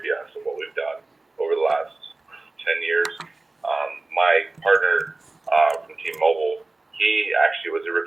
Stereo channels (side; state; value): left; quieter; 3.2 dB